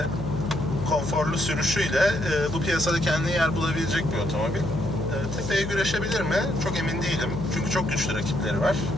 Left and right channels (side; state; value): left; noise; hum, 7 dB below the sound